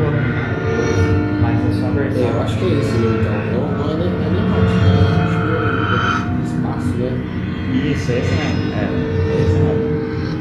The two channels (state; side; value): identical; both; correlation 1.00